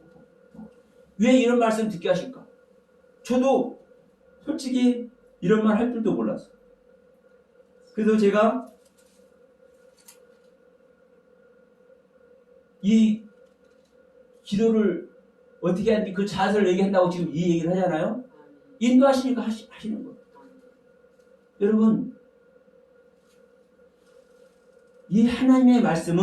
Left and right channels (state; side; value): identical; both; correlation 1.00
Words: 왜 이런 말씀 듣게 하실까? 저도 솔직히 이런 말 할 줄도 몰랐어요. 그래서 제가 이 기도를 어떻게 하는지 그 자세를 얘기한다고 지금 이 얘기를 하잖아요. 인도하시니까 하시는 거예요. 여러분, 이 하나님의